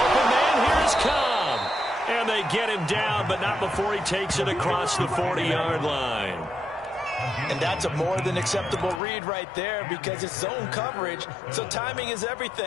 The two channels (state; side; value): drops out; right; at 9.0 s